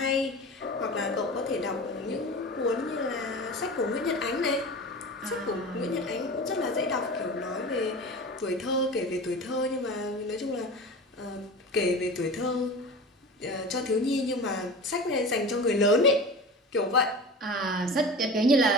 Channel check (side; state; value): both; normal; correlation 0.33